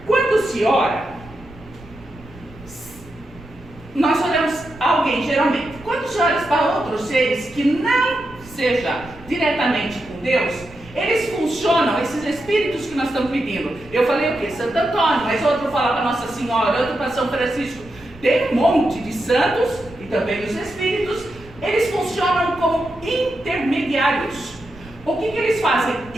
Quando se ora, nós oramos a alguém, geralmente. Quando se ora para outros seres que não seja diretamente com Deus, eles funcionam, esses espíritos que nós estamos pedindo. Eu falei o quê? Santo Antônio, mas outro fala para Nossa Senhora, outro para São Francisco. Tem um monte de santos e também os espíritos. Eles funcionam como intermediários. O que eles fazem?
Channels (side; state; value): right; noise; rumble, 20 dB below the sound